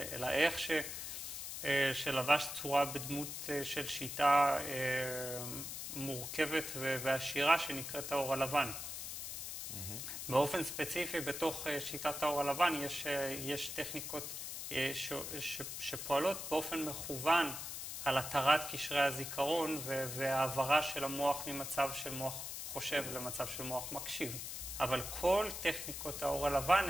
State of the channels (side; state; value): left; noise; hiss, 6 dB below the sound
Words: אלא איך שלבש צורה בדמות של שיטה מורכבת ועשירה שנקראת האור הלבן. באופן ספציפי, בתוך שיטת האור הלבן יש טכניקות שפועלות באופן מכוון על התרת קשרי הזיכרון והעברה של המוח ממצב של מוח חושב למצב של מוח מקשיב. אבל כל טכניקות האור הלבן